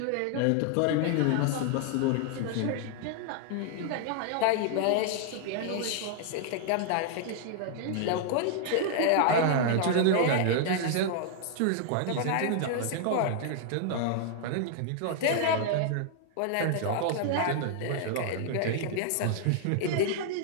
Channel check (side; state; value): both; different; correlation 0.00